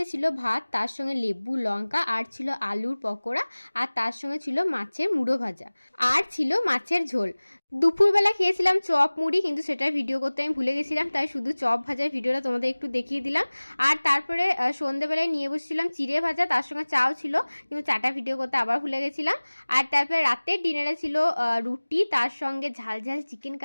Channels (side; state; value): both; inverted; correlation -1.00